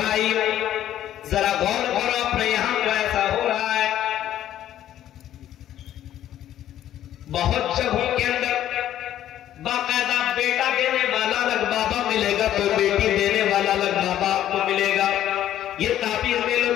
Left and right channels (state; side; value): quieter; right; 11.9 dB